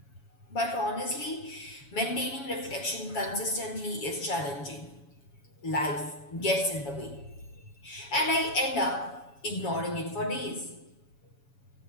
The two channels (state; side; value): late; right; 7.1 ms